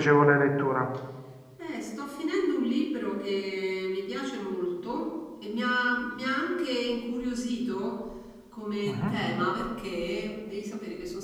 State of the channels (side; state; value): both; identical; correlation 1.00